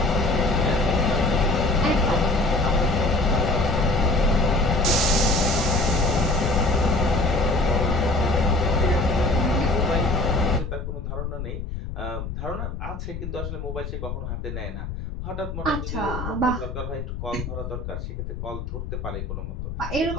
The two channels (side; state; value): left; noise; rumble, 6 dB below the sound